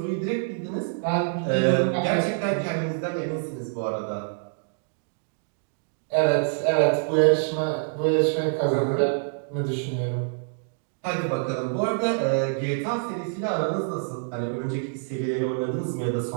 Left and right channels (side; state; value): left; silent; digital silence